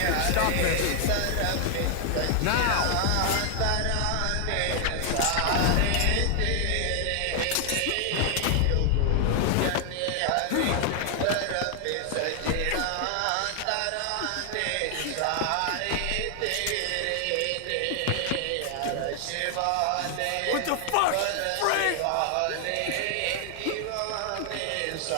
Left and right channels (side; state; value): both; different; correlation 0.00